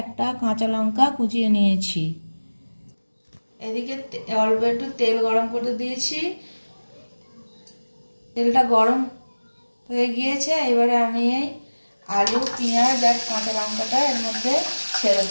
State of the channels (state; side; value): inverted; both; correlation -1.00